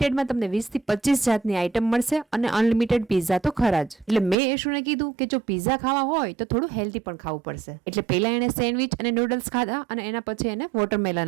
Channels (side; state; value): left; drops out; at 4.4 s